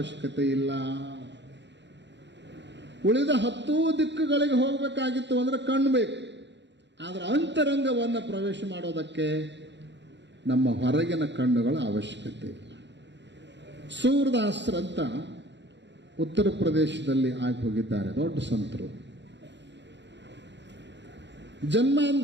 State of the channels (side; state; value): left; late; 0.52 ms